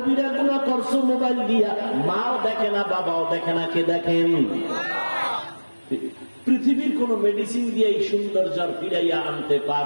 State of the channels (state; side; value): inverted; both; correlation -1.00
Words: গুনাহ করছো মোবাইল দিয়া, মাও দেখে না, বাবাও দেখে না, কে দেখেন? পৃথিবীর কোন মেডিসিন দিয়ে এই সৌন্দর্য ফিরাইয়া আনতে